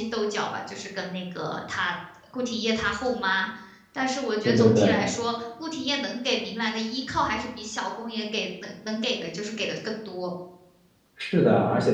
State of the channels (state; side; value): identical; both; correlation 1.00